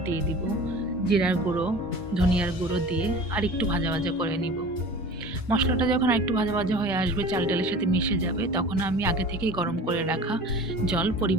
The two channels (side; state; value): both; normal; correlation 0.39